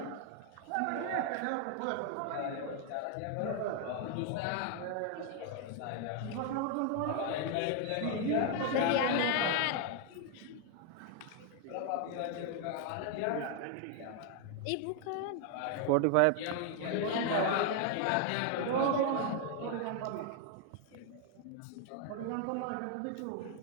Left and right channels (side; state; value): both; different; correlation 0.00